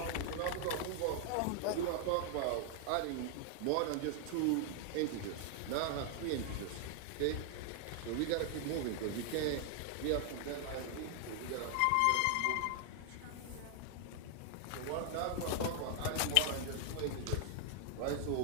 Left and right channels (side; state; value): both; different; correlation 0.00